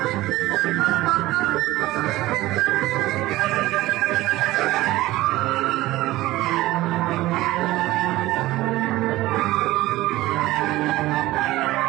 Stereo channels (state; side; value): quieter; left; 17.5 dB